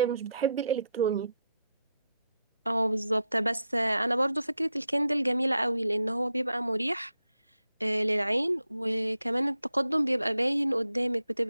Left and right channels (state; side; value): inverted; both; correlation -0.83